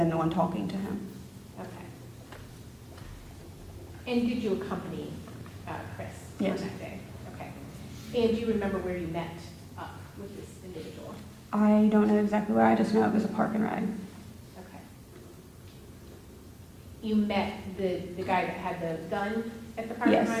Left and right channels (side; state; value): both; identical; correlation 1.00